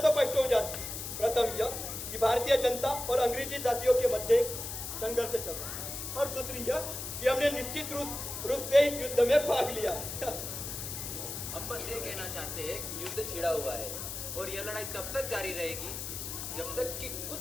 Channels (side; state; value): left; noise; hiss, 6 dB below the sound